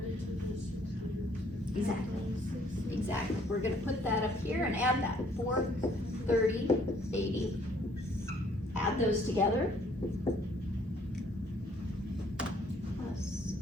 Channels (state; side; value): normal; both; correlation 0.62